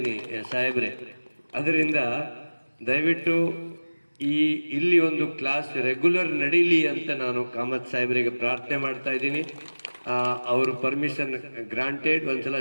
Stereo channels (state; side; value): inverted; both; correlation -1.00